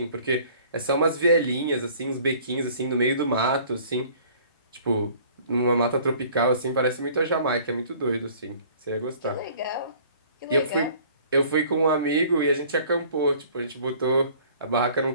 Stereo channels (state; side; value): inverted; both; correlation -0.52